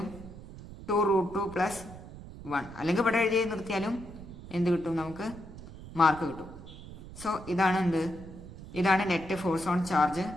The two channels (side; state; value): right; noise; rumble, 14 dB below the sound